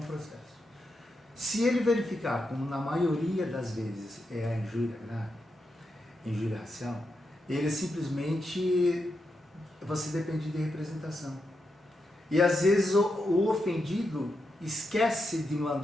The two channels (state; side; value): normal; both; correlation 0.85